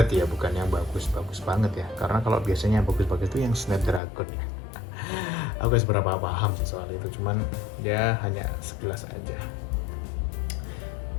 ya, bukan yang bagus-bagus banget ya. Karena kalau biasanya yang bagus-bagus itu yang Snapdragon ya. Aku gak seberapa paham sih soal itu, cuman dia hanya sekilas aja.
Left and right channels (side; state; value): right; drops out; at 4.0 s